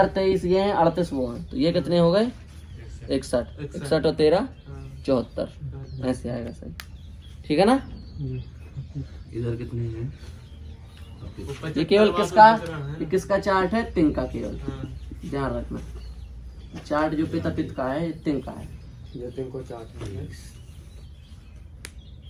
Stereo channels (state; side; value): identical; both; correlation 1.00